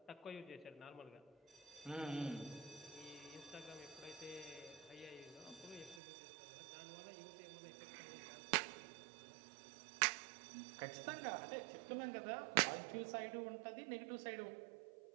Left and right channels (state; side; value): drops out; left; at 6.0 s